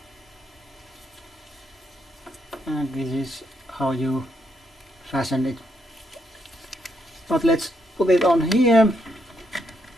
and this is how you fasten it. But let's put it on here.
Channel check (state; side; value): normal; both; correlation 0.77